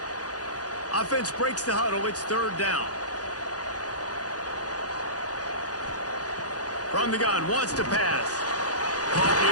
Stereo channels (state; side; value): late; right; 0.68 ms